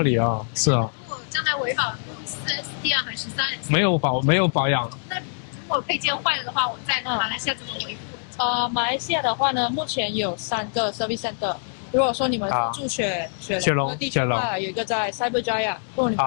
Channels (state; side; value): silent; right; digital silence